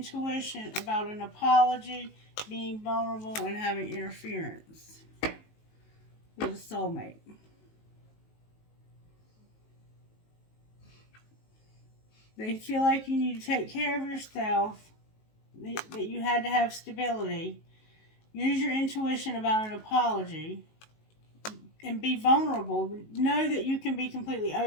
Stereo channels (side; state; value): right; late; 19 ms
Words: about an apology, being vulnerable, and having interference with a soulmate. They feel like you need to take care of yourself, that you had to have stability. Use your intuition about an apology and be vulnerable. Know that you can be completely